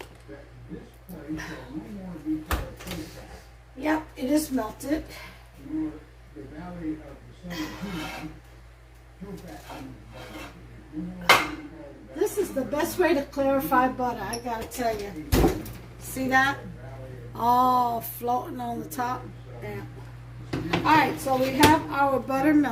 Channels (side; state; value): both; identical; correlation 1.00